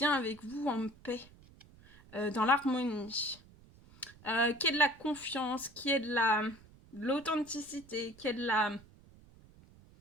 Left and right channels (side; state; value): right; noise; rumble, 24 dB below the sound